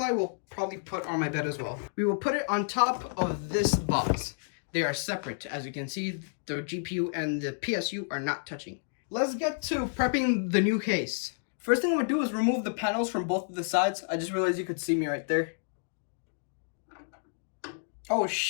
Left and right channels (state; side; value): silent; right; digital silence